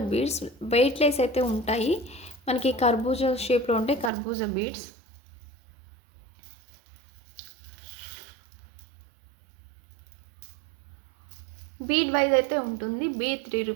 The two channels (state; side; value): drops out; left; at 4.1 s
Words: బీడ్స్ వెయిట్లెస్ అయితే ఉంటాయి. మనకి కర్బూజా షేప్లో ఉంటాయి కర్బూజా బీడ్స్. బీడ్ వైజ్ అయితే ఉంటుంది. బీడ్ 3